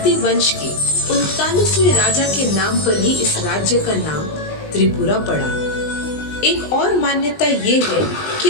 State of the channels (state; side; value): late; right; 20 ms